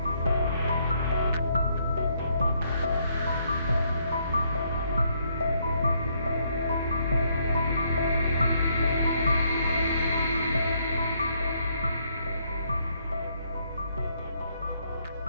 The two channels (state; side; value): inverted; both; correlation -0.71